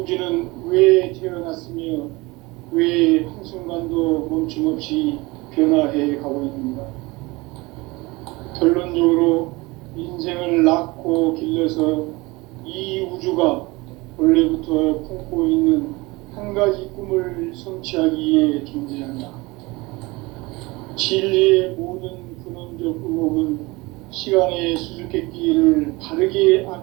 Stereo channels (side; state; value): left; quieter; 23.2 dB